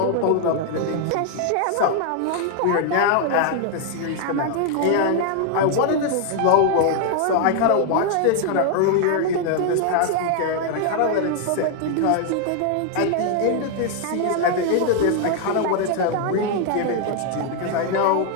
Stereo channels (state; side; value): different; both; correlation 0.00